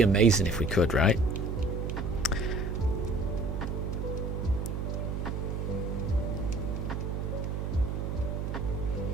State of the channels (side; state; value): right; noise; hum, 2 dB below the sound